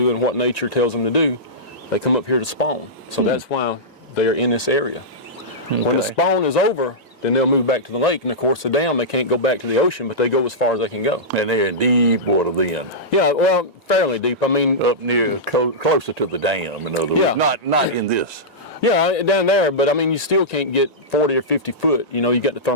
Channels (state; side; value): normal; both; correlation -0.13